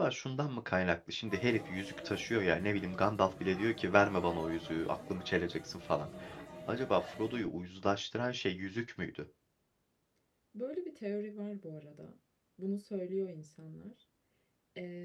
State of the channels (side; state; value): both; identical; correlation 1.00